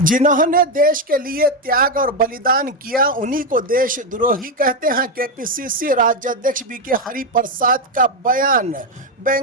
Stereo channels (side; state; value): both; normal; correlation 0.06